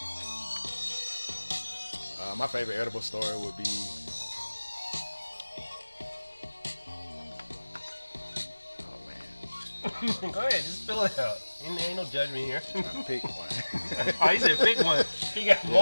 Wow. My favorite edible story would be. Oh man. Go ahead, just spill it out. Ain't no judgment here. I'm trying to pick one. Oh, he said pick one. He got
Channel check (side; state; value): both; inverted; correlation -1.00